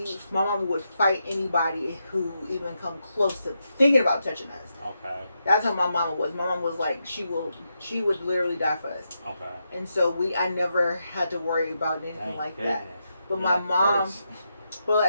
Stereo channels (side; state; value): both; inverted; correlation -0.84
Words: fight anybody who even come close to thinking about touching us. Okay. That's how my mama was. My mom was like, she would literally die for us. Okay. And so I never had to worry about anything like that. But my mom, but